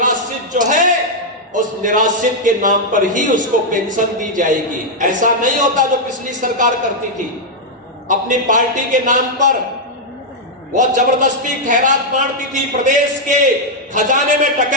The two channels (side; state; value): both; normal; correlation -0.02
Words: जो है उस निराश्रित के नाम पर ही उसको पेंशन दी जाएगी। ऐसा नहीं होता जो पिछली सरकार करती थी, अपनी पार्टी के नाम पर वो जबरदस्ती खैरात बांटती थी, प्रदेश के खजाने में